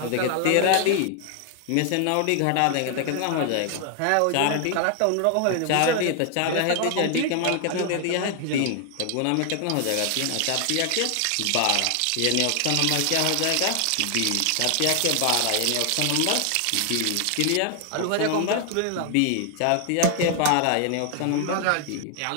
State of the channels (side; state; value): both; different; correlation 0.00